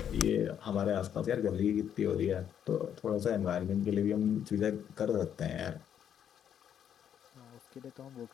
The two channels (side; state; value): right; quieter; 9.1 dB